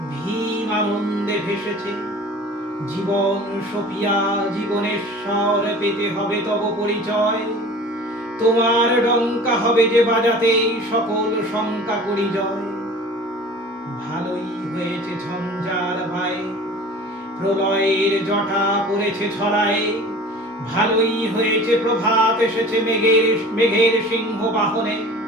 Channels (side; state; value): both; normal; correlation 0.42